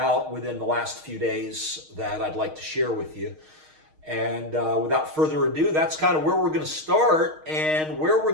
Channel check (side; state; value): left; late; 6.4 ms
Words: within the last few days that I'd like to share with you. And without further ado, that's kind of where we're going to start. And where we're